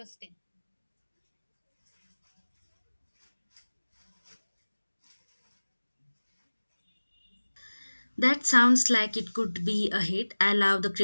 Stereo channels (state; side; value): inverted; both; correlation -1.00